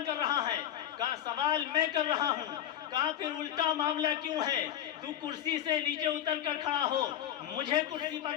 کر رہا ہے؟ کہا سوال میں کر رہا ہوں۔ کہا پھر الٹا معاملہ کیوں ہے؟ تو کرسی سے نیچے اتر کر کھڑا ہو، مجھے کرسی پر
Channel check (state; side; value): quieter; right; 10.8 dB